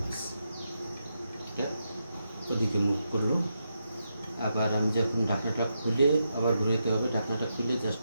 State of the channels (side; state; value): both; inverted; correlation -0.84